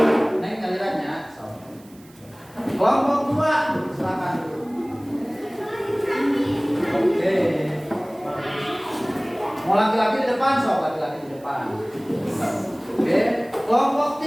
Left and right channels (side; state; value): right; noise; hiss, 27 dB below the sound